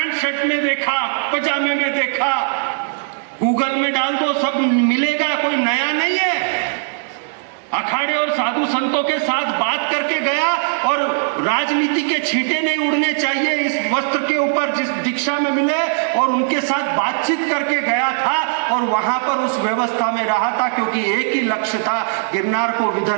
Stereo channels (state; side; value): silent; left; digital silence